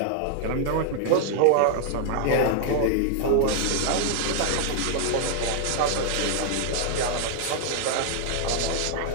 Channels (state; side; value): different; both; correlation 0.00